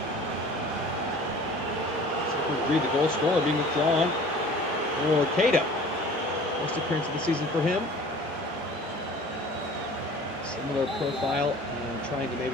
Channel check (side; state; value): both; normal; correlation 0.45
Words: So we read the goal scorer being withdrawn for Cato. First appearance of the season for him. Similar profile and trying to